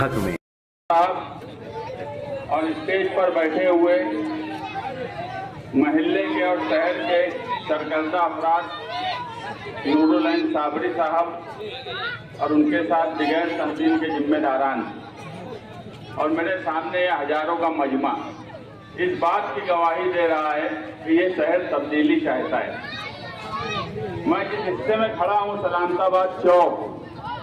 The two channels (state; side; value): identical; both; correlation 1.00